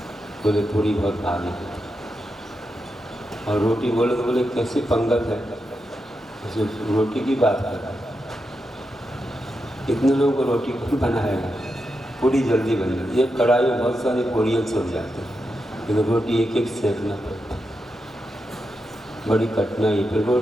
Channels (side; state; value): both; normal; correlation 0.87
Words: बोले पूरी बहुत भारी है, और रोटी बोले तो बोले कैसे पंगत है, जैसे रोटी की बात कर रहा है। इतने लोगों को रोटी कौन बनाएगा? पूरी जल्दी बन जाती है, एक कढ़ाई में बहुत सारी पूड़ियाँ छूट जाती हैं, लेकिन रोटी एक एक सेकना पड़ता है, बड़ी कठिनाई। फिर